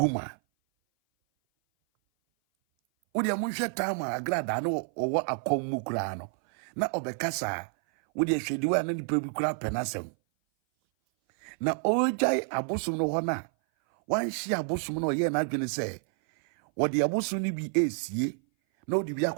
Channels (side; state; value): left; silent; 57 dB below the other